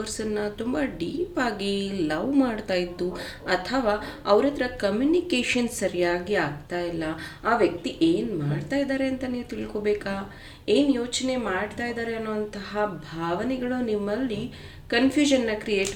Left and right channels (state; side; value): identical; both; correlation 1.00